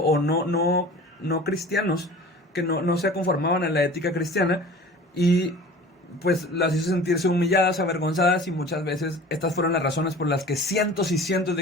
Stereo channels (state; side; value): normal; both; correlation 0.41